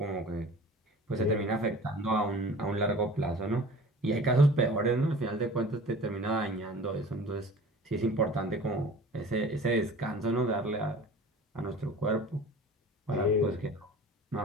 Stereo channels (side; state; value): both; normal; correlation 0.43